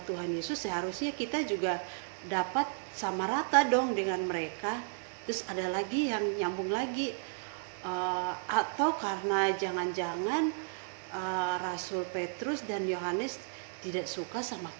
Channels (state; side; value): silent; left; digital silence